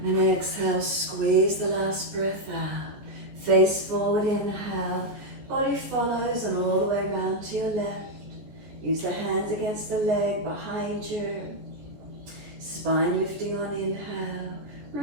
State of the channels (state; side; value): late; left; 14 ms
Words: And then exhale, squeeze the last breath out. Face forward, inhale. Body follows and all the way around to your left. Use the hands against the leg behind you. Spine lifting on inhale,